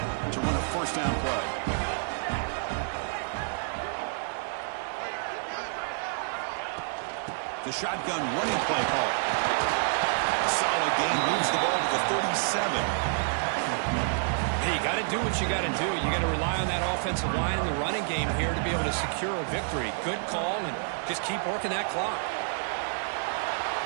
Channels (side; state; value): left; silent; digital silence